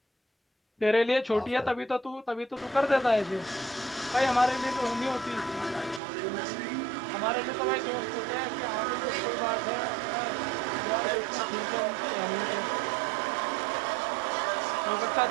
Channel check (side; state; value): left; drops out; at 6.0 s